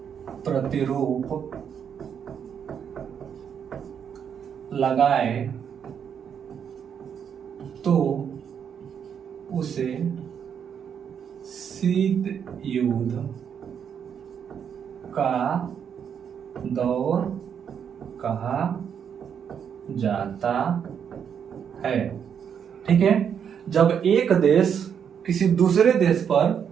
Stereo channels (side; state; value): left; quieter; 7.8 dB